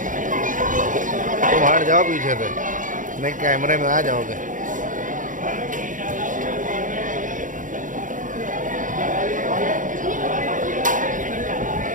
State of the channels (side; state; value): left; late; 0.38 ms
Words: तुम हट जाओ पीछे से, नहीं कैमरे में आ जाओगे।